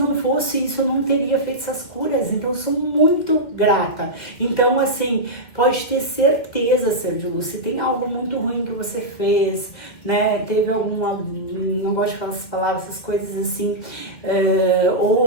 fosse isso, eu não teria feito essas curas, então eu sou muito grata. Então, assim, pode ter certeza, Ser de Luz, se tem algo muito ruim que você fez, né, teve alguma, não gosto de falar essas palavras, essas coisas assim,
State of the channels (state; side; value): late; right; 2.1 ms